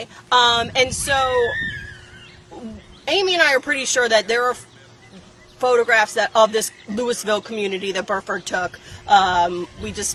And so Amy and I are pretty sure that there are photographs of this Louisville community that Burford took.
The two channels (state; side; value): identical; both; correlation 1.00